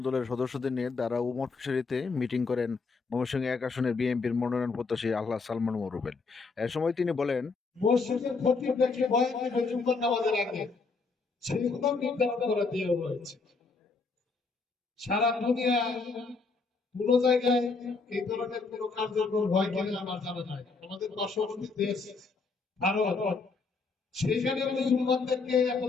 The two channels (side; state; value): right; quieter; 4.3 dB